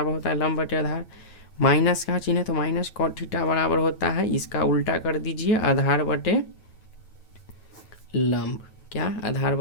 होता है लंब बटे आधार। माइनस का चिन्ह है तो माइनस कॉट थीटा बराबर होता है, इसका उल्टा कर दीजिए, आधार बटे लंब। क्या? आधार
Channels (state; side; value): late; right; 9.2 ms